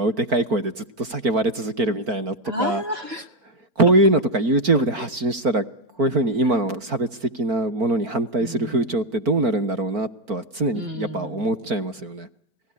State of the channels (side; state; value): left; late; 4.5 ms